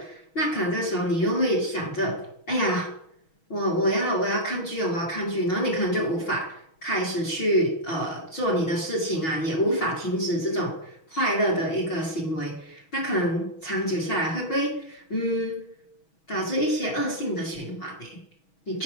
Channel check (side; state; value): right; late; 6.2 ms